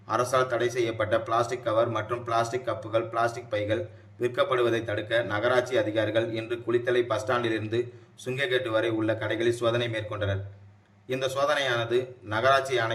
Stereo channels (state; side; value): identical; both; correlation 1.00